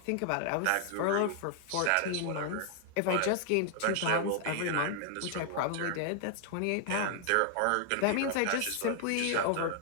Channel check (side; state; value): both; different; correlation 0.00